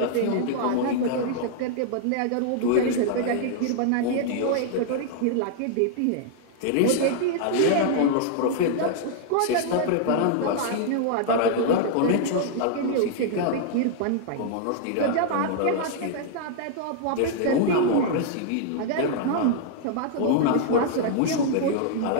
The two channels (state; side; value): different; both; correlation -0.01